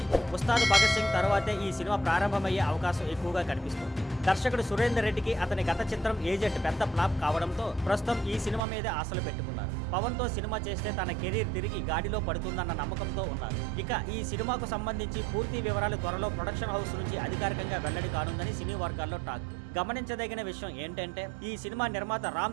ఉస్తాద్ భగత్ సింగ్ తర్వాతే ఈ సినిమా ప్రారంభమయ్యే అవకాశం ఎక్కువగా కనిపిస్తుంది. దర్శకుడు సురేందర్ రెడ్డికి అతని గత చిత్రం ఏజెంట్ పెద్ద ఫ్లాప్ కావడంతో ప్రస్తుతం ఈ సినిమా మీద ఆశలు పెట్టుకున్నారు. పవన్ తో సినిమా చేస్తే తన కెరీర్ తిరిగి గాడిలో పడుతుందన్న నమ్మకంతో ఉన్నారు. ఇక ఈ సినిమాకు సంబంధించి పూర్తి వివరాలు త్వరలో ప్రొడక్షన్ హౌస్ నుంచి అధికారికంగా వెల్లడి కానుందని సినీ వర్గాల్లో టాక్. గమనించదగిన విషయం ఏంటంటే ఈ సినిమా నిర్మాత రామ్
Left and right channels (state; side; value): drops out; left; at 8.6 s